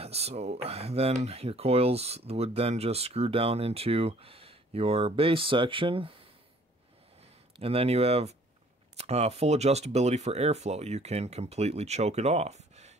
So then your coils would then just screw down into your base section, and then you have full adjustability for airflow. You can completely choke it off.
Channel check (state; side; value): normal; both; correlation 0.57